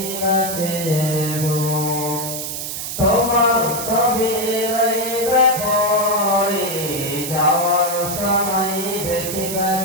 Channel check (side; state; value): right; noise; hiss, 5 dB below the sound